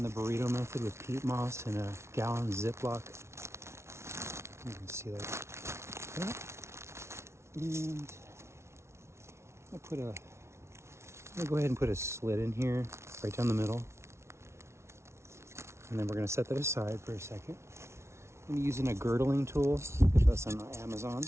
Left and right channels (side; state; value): left; late; 0.13 ms